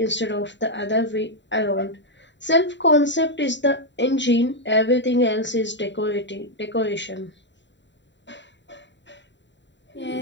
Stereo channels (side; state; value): right; late; 0.52 ms